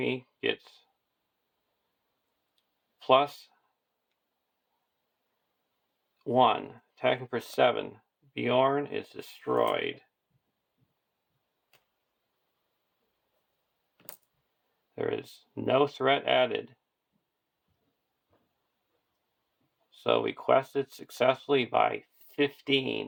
gets +1. Attacking for 7 Beorn is destroyed. There is no threat added. So we quested successfully by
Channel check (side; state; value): both; identical; correlation 1.00